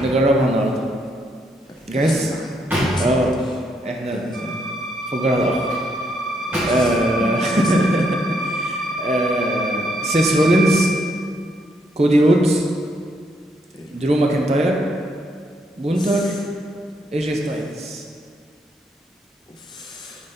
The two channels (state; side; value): normal; both; correlation 0.75